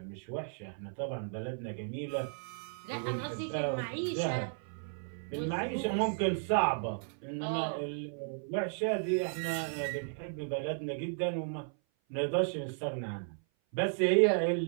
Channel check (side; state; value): left; silent; 55 dB below the other